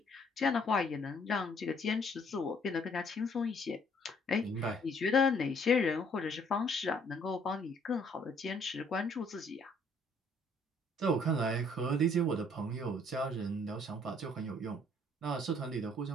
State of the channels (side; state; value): both; normal; correlation 0.63